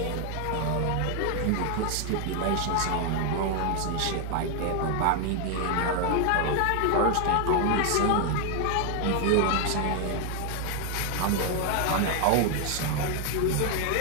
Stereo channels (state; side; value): different; both; correlation 0.00